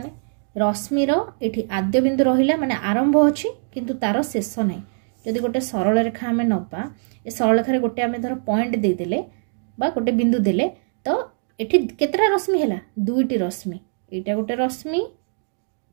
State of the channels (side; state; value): left; silent; digital silence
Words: रश्मिर एठी आद्य बिंदु रहिला माने आरंभ अछि किंतु तार शेष नै। जदि गोटे सरल रेखा आमे नबा ए सरल रेखा रे गोटे आमे धर पॉइंट दे देले बा गोटे बिंदु देले तो एठी केतरा रश्मि हैला दुईटी रश्मि एटा गोटे रश्मि